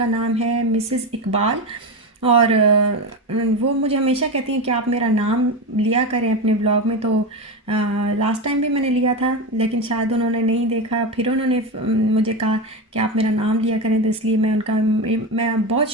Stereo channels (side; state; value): both; normal; correlation 0.17